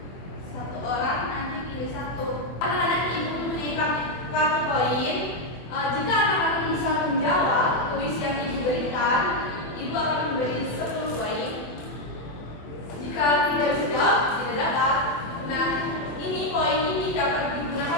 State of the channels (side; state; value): right; late; 24 ms